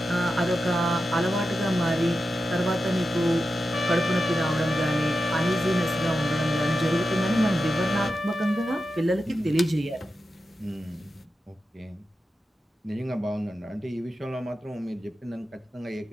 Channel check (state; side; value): normal; both; correlation 0.90